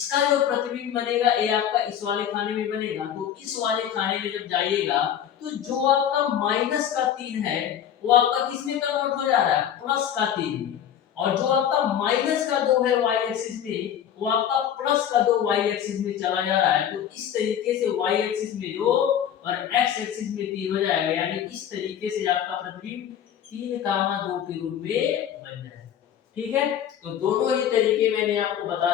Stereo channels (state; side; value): quieter; right; 9.6 dB